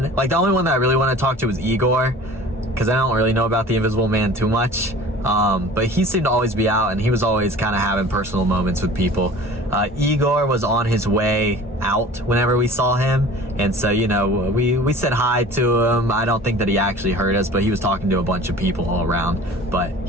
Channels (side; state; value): both; normal; correlation 0.43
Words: only one that I really want to talk to was Igor, because I don't really know about the Invisible Man too much. But he seemed to always be out, and he was always kind of having personal moments with people. Igor was on his way out whenever we saw him, and so, you know, we said hi to him. I don't think that he actually heard us, but he was talking to a bunch of people all around, but